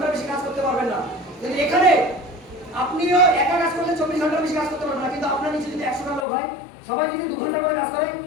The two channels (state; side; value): drops out; right; at 6.2 s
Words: বেশি কাজ করতে পারবেন না, কিন্তু এখানে আপনিও একা কাজ করলে 24 ঘন্টার বেশি কাজ করতে পারবেন না, কিন্তু আপনার নিচে যদি 100টা লোক হয়, সবাই যদি 2 ঘন্টা করে কাজ করে,